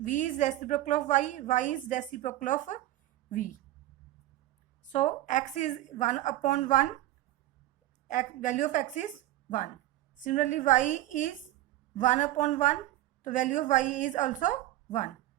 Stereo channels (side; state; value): left; quieter; 15.2 dB